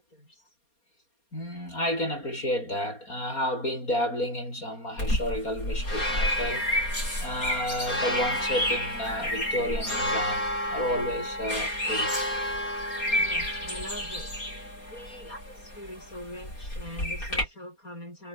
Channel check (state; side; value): late; right; 4.3 ms